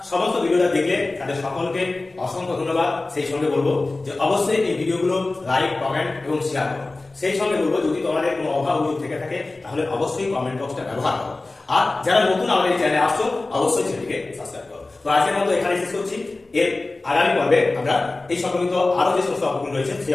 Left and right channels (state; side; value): quieter; right; 3.2 dB